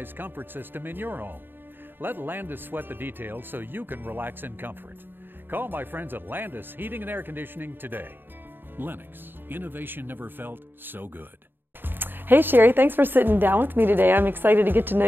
comfort system in your home. Let Landis sweat the details so you can relax in comfort. Call my friends at Landis Heating and Air Conditioning today. Lennox, innovation never felt so good. Hey Sherri, thanks for sitting down with me today. I'm excited to get to know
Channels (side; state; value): left; late; 0.096 ms